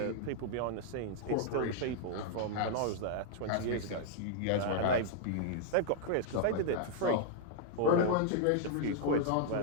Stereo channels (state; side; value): different; both; correlation -0.01